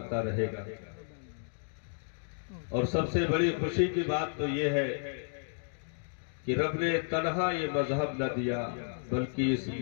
رہے گا۔ اور سب سے بڑی خوشی کی بات تو یہ ہے کہ رب نے تنہا یہ مذہب نہ دیا، بلکہ اس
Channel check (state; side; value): silent; right; digital silence